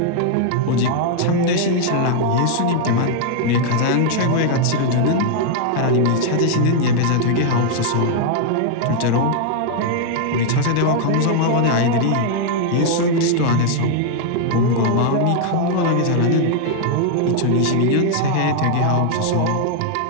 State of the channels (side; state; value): both; different; correlation 0.00